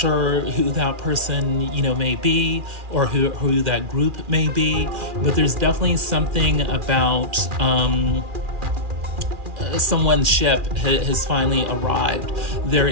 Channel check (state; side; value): late; left; 2.4 ms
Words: who that person, may be, or who that group may be, but there's definitely something about someone's ship has finally arrived. There